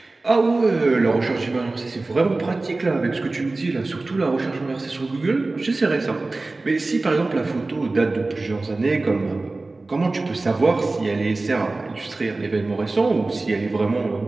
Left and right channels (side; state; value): left; quieter; 3.3 dB